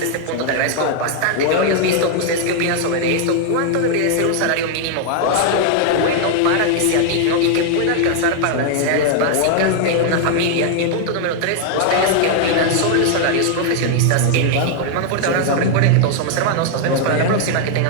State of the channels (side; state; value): both; different; correlation 0.00